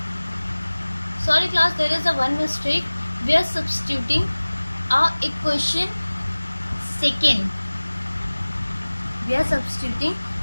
there is a one mistake. We are substituting our equation second.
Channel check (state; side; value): inverted; both; correlation -1.00